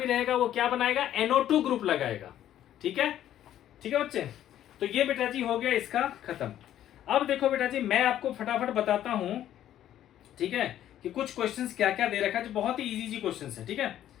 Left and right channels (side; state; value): right; quieter; 11.7 dB